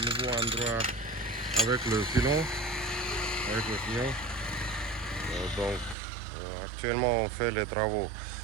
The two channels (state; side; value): drops out; left; at 6.0 s